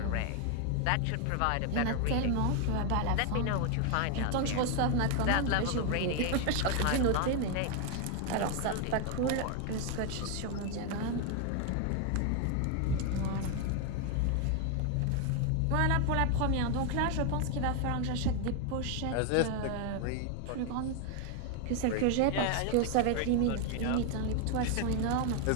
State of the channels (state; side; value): different; both; correlation 0.01